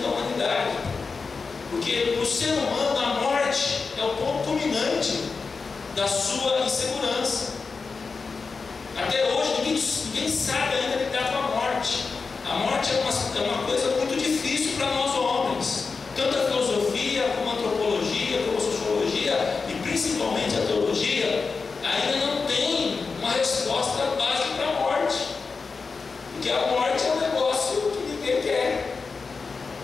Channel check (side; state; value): right; quieter; 4.7 dB